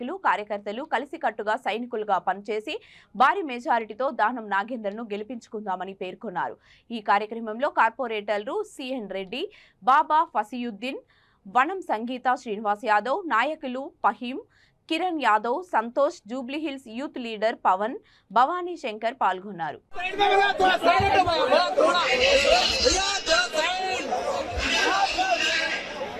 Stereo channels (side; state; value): both; identical; correlation 1.00